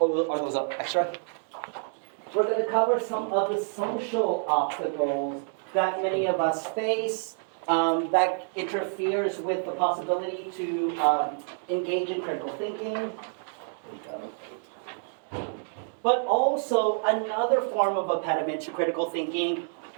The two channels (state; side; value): silent; left; 59 dB below the other